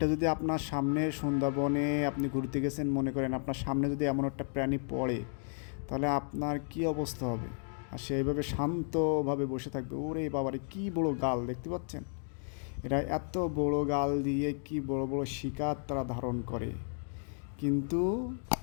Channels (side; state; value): right; silent; 56 dB below the other